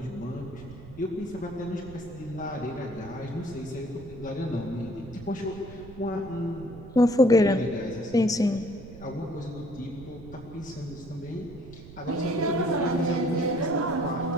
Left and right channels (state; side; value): noise; right; rumble, 16 dB below the sound